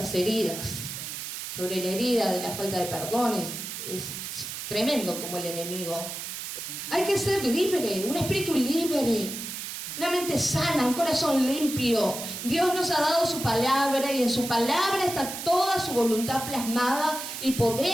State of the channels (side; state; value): right; noise; hiss, 7 dB below the sound